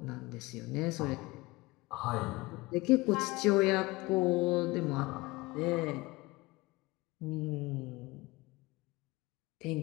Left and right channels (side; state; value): right; quieter; 22.0 dB